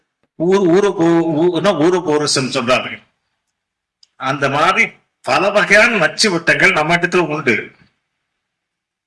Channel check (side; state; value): both; identical; correlation 1.00